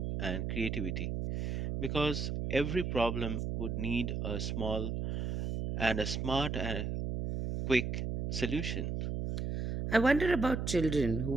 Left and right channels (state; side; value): noise; right; hum, 2 dB below the sound